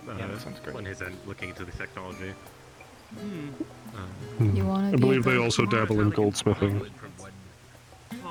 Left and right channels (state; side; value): identical; both; correlation 1.00